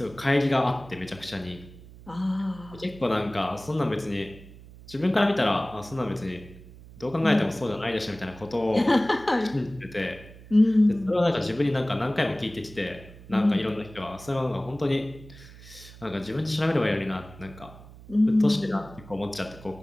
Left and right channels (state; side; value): noise; right; hum, 19 dB below the sound